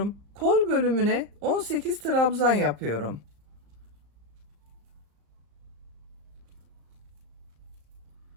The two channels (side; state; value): left; late; 35 ms